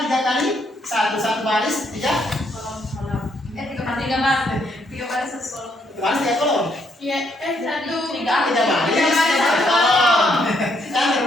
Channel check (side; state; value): both; normal; correlation 0.73